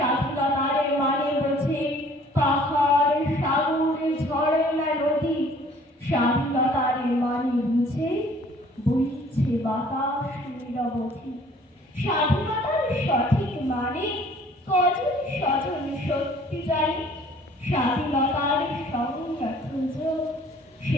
মানে বুঝে পাহাড় সাগর ঝর্ণা নদী, স্বাধীনতার মানে বুঝে বইছে বাতাস নিরবধি। স্বাধীনতার সঠিক মানে কজন স্বজন সত্যি জানে, স্বাধীনতার সংজ্ঞা খুঁজো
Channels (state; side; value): normal; both; correlation 0.55